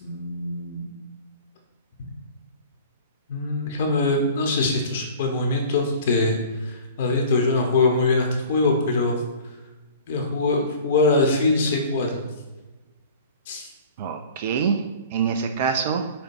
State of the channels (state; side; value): inverted; both; correlation -0.43